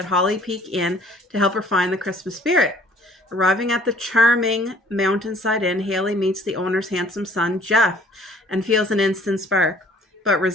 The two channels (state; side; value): normal; both; correlation 0.56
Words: Holly Peak Inn to help her find the Christmas spirit. Arriving at the charming Mountainside Inn, Haley meets the owner's handsome son, Jeff, and feels an instant spark, but